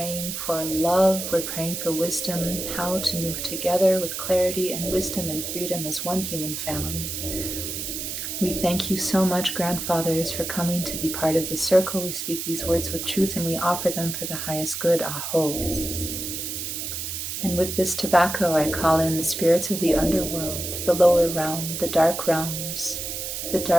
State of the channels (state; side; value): noise; right; hiss, 5 dB below the sound